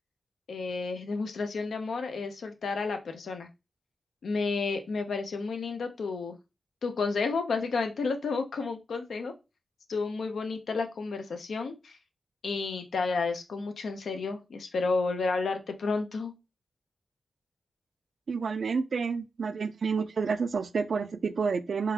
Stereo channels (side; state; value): both; normal; correlation 0.84